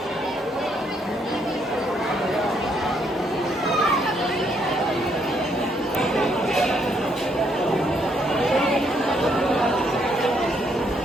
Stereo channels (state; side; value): normal; both; correlation 0.72